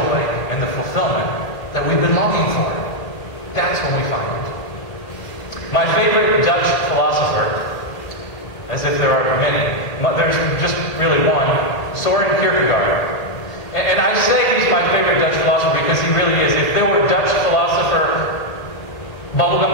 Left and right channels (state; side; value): late; right; 2.0 ms